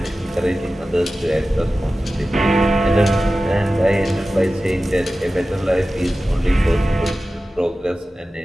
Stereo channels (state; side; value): normal; both; correlation 0.95